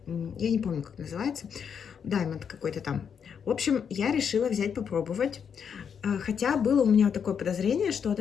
я не помню, как называется, Diamond какой-то там. В общем, я решила взять попробовать, хотя было у меня вот такое подозрение, что от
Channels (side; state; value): right; quieter; 7.2 dB